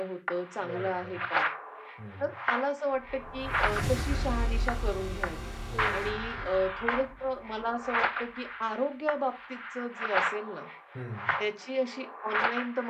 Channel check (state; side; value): identical; both; correlation 1.00